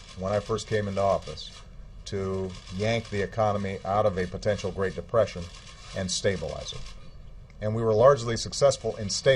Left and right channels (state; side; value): identical; both; correlation 1.00